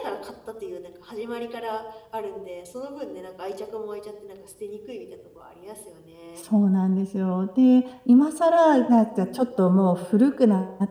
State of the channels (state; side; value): identical; both; correlation 1.00